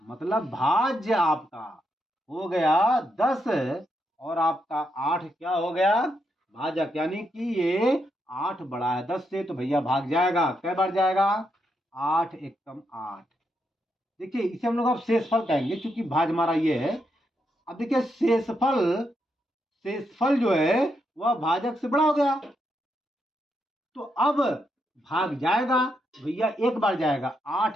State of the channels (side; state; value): both; normal; correlation 0.81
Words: मतलब भाज्य आपका हो गया 10 और आपका 8 क्या हो गया? भाजक। यानी कि ये 8 बड़ा है 10 से, तो भैया भाग जाएगा। कै बार जाएगा? 8 एकम 8। देखिए इसे हम लोग अब शेषफल कहेंगे, क्योंकि भाज हमारा ये है। अब देखिए शेषफल जो है वह भाजक से बड़ा हो गया, तो अब भाग जाएगा भैया, एक बार जाएगा,